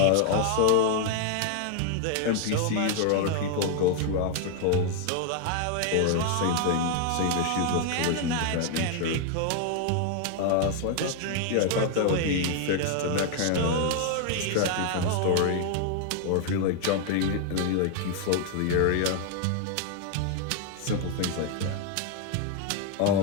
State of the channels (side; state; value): both; different; correlation 0.00